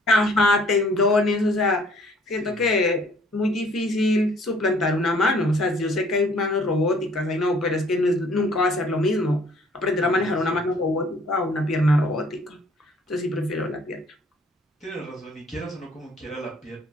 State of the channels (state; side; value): normal; both; correlation 0.58